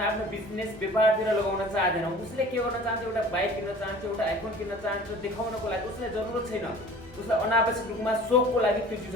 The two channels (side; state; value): both; normal; correlation 0.45